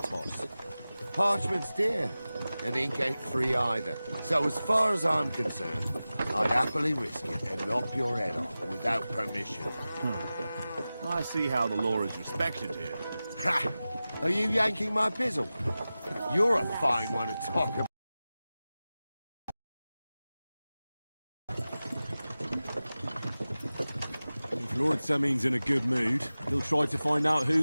to us. Parchment's dear, and ink ain't free either. So as far as I'm concerned, I'd happily risk it and lop your head off without permission. I see how the law is respected here. Ha! Are you yanking my pizzle? You're a fine one to talk about. If Lord Sameen's in a good mood, he'll try to find out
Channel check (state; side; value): inverted; both; correlation -0.96